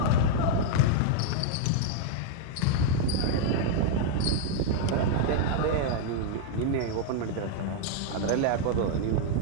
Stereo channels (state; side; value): different; both; correlation -0.01